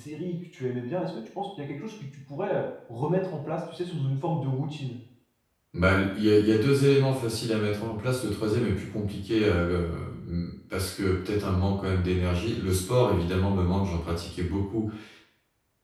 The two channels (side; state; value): both; identical; correlation 1.00